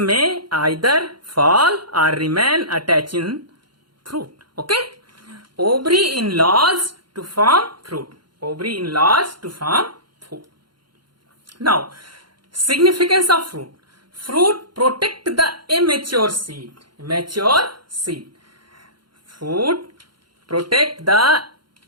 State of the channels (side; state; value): left; late; 0.72 ms